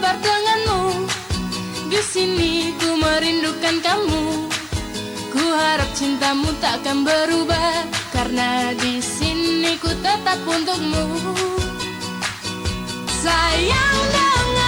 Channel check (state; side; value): noise; right; hiss, 26 dB below the sound